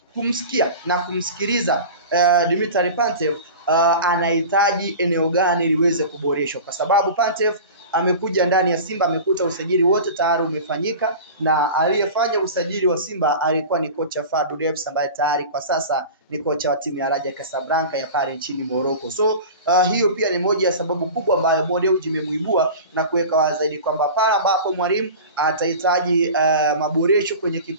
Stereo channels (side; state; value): both; inverted; correlation -0.35